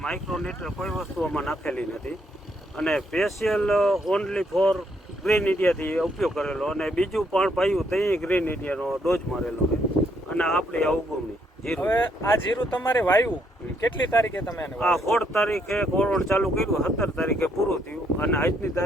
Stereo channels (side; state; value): both; normal; correlation 0.72